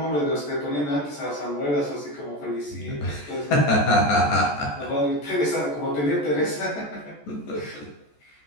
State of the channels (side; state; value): right; late; 14 ms